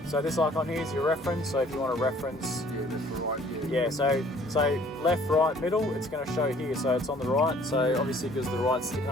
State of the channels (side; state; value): both; normal; correlation 0.56